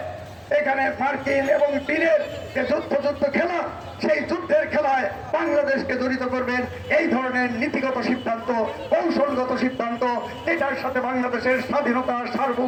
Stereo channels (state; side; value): identical; both; correlation 1.00